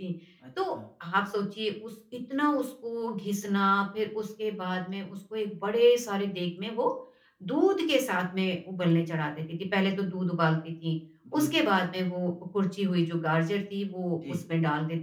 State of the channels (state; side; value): identical; both; correlation 1.00